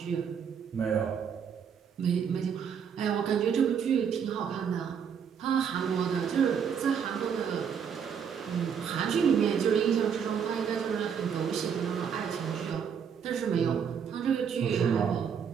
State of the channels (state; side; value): quieter; left; 7.4 dB